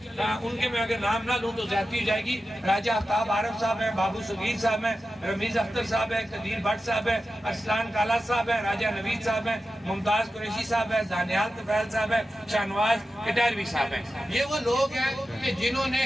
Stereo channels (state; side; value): normal; both; correlation 0.92